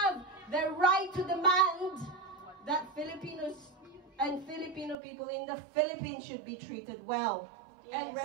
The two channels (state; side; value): drops out; left; at 5.0 s